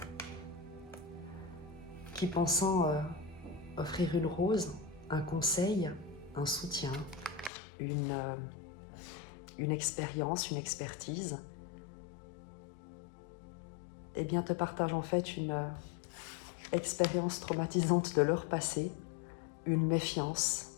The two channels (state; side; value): drops out; right; at 7.5 s